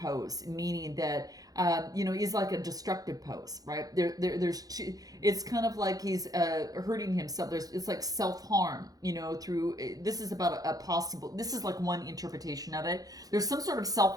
meaning that, he's like a destructive pose, right? There's 2, it's kind of like he's hurting himself. It's like self-harm, through, this is about this is like one interpretation of it. There's some sort of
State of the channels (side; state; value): left; late; 0.18 ms